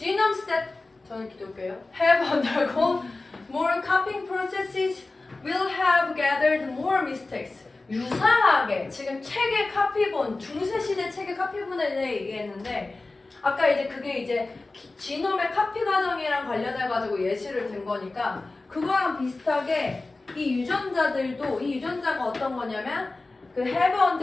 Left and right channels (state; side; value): quieter; right; 3.3 dB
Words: that 저는 기독교예요. Have undergone more copying processes will have gathered more mistakes. 유사하게 지금 책의 카피본, 중세시대 책의 카피본에 대해 얘기했는데 아까 이제 그게 이제 지놈의 카피 과정이랑 관련해가지고 예시를 든 거니까 그거랑 비슷하게 이 유전자들도 이 유전자가 어떤 거냐면 그 have